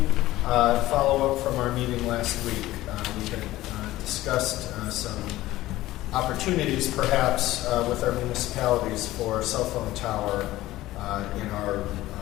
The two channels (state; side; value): quieter; right; 16.4 dB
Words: Follow up from our meeting last week. We had discussed some opportunities, perhaps, with our municipalities for a cell phone tower in our